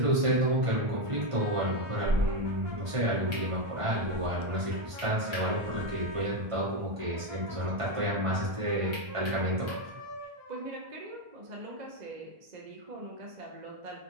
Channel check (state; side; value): late; left; 1.5 ms